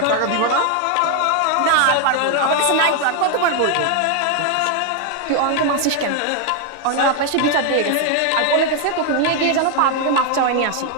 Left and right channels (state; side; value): different; both; correlation 0.01